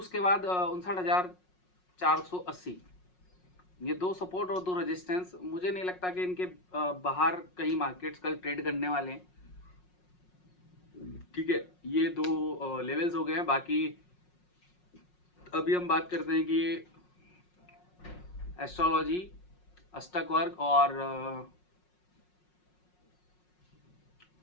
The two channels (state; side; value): late; right; 5.5 ms